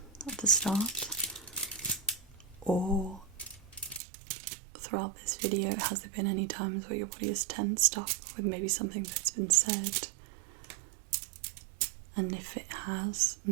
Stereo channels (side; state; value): left; drops out; at 4.0 s